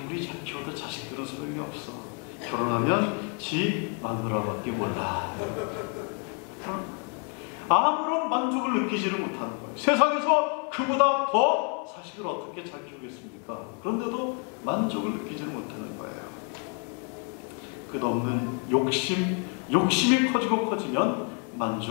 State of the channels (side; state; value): right; quieter; 37.9 dB